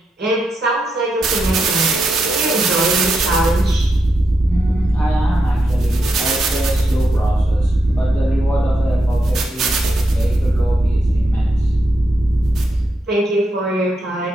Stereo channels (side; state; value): both; normal; correlation 0.84